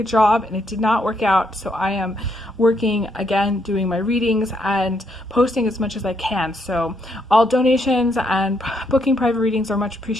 job and it did not work out, so I am working again, doing my readings and posting as much as I can. So all donations and booking private readings are much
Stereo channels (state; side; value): normal; both; correlation 0.75